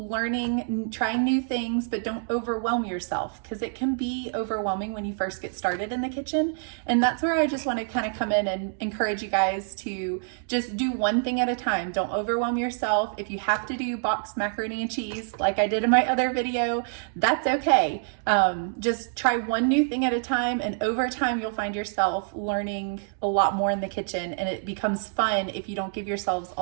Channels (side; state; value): left; silent; digital silence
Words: trying new things, but don't overwhelm yourself, because it can be overwhelming when you first get started in the kitchen. And that's where I just want to kind of come in and encourage you guys to just do one thing at a time. Don't overwhelm yourself. If you have to do boxed macaroni and cheese like I did in my other video, that's okay. Just try one new thing at a time, and over time you'll find yourself learning a lot more in the kitchen, and it becomes fun if you don't give yourselves